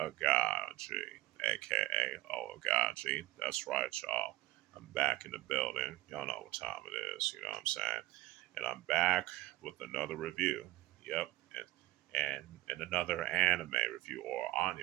Oaghaji. That's right, y'all. I'm back in the building. Y'all know what time it is, you know what I'm saying? And I'm back with another review. Yep. And another anime review or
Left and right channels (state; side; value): quieter; left; 17.8 dB